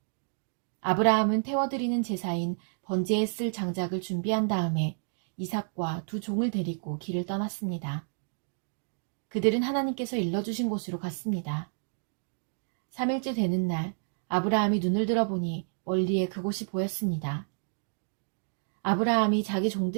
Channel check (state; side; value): silent; left; digital silence